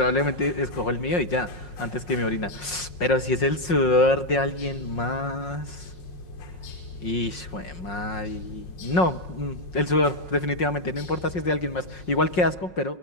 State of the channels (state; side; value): late; right; 5.5 ms